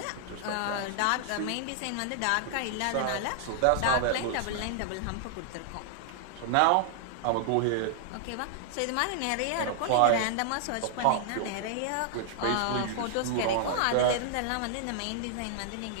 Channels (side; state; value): both; different; correlation -0.01